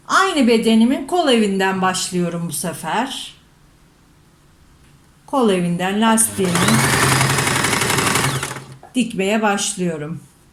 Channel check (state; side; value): identical; both; correlation 1.00